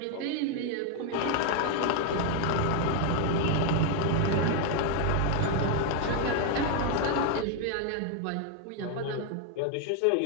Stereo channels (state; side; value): different; both; correlation 0.00